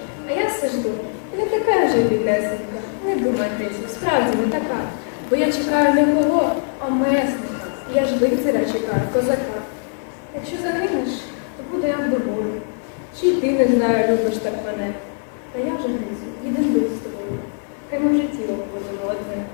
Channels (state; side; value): silent; right; 65 dB below the other